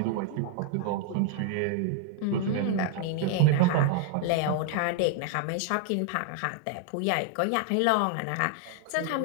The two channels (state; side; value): different; both; correlation 0.00